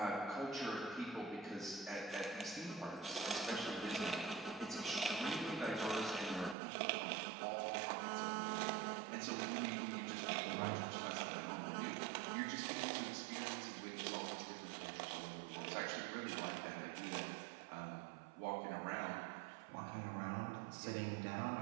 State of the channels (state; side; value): drops out; left; at 6.6 s